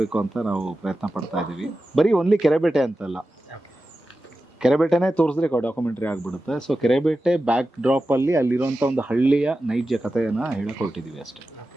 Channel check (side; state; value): both; normal; correlation 0.93